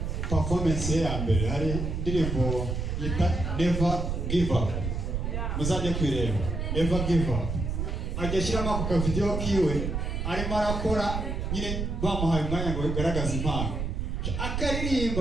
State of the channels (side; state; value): right; noise; rumble, 2 dB below the sound